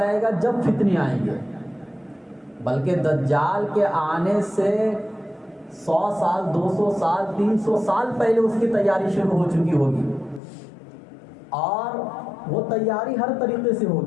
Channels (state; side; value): drops out; right; at 10.4 s